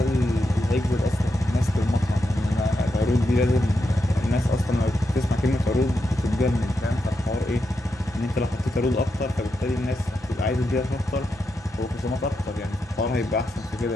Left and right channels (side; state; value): both; normal; correlation 0.85